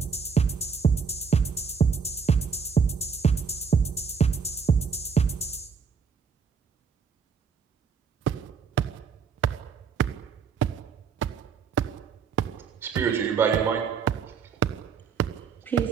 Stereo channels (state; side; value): quieter; left; 6.0 dB